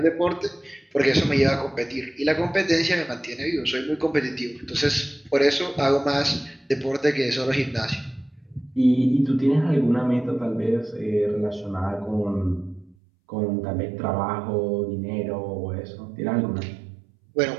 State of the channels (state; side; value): drops out; left; at 13.0 s